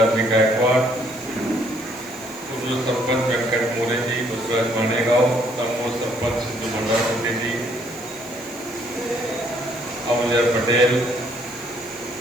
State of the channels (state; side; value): noise; right; hiss, 20 dB below the sound